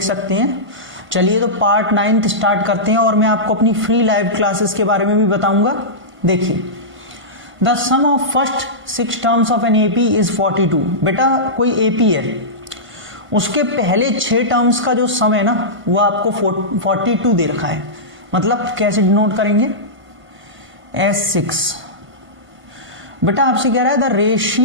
सकते हैं। चलिए तो पार्ट 9th स्टार्ट करते हैं और मैं आपको अपनी फ्री लाइव क्लासेस के बारे में भी बताऊंगा। देखिए, the sum of first 6 terms of an AP is 42। बेटा कोई एपी है, उसके पहले 6 टर्म्स का जो सम है ना वो आपको 42 दे रखा है। मतलब कैसे डिनोट करेंगे? S6। बेटा आपसे कह रहा है the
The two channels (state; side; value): late; left; 1.5 ms